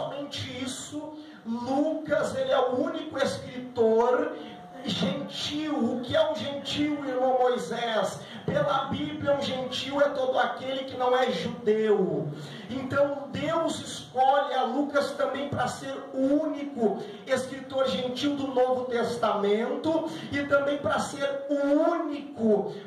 isso, Lucas, ele é o único escritor gentil. O que é um gentil, irmão Moisés? Pela Bíblia, um gentil é todo aquele que não é judeu. Então Deus escolhe a Lucas também para ser o único escritor gentil do Novo Testamento, e também para ser o único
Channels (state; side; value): identical; both; correlation 1.00